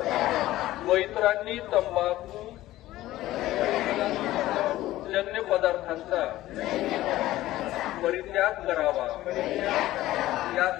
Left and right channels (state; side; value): quieter; right; 15.7 dB